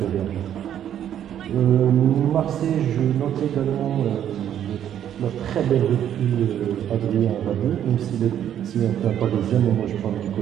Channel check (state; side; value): quieter; left; 10.2 dB